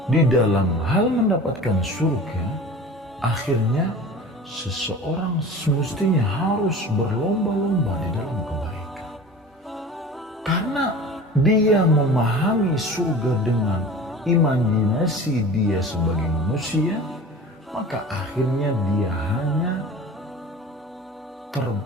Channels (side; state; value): both; normal; correlation 0.38